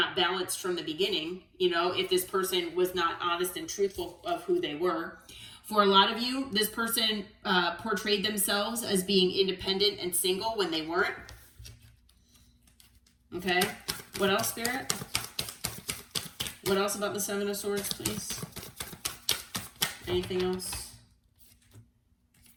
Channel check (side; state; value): both; identical; correlation 1.00